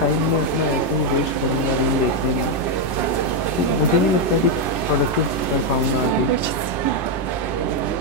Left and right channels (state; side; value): late; right; 10 ms